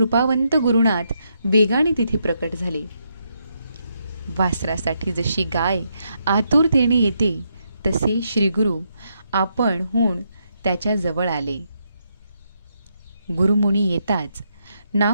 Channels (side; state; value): both; inverted; correlation -0.79